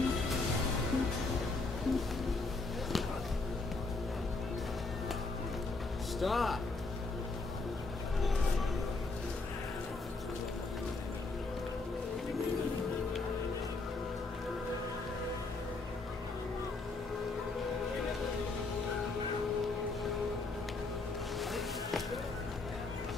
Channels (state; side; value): quieter; right; 3.6 dB